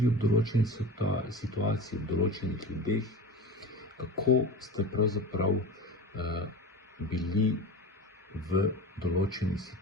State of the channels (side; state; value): both; normal; correlation 0.31